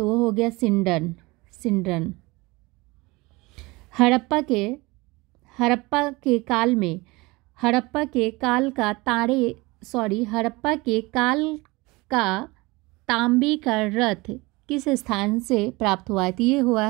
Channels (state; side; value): quieter; left; 23.3 dB